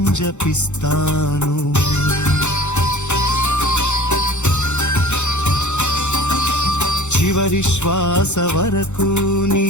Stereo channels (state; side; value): late; right; 0.83 ms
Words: జపిస్తాను చివరి శ్వాస వరకు నీ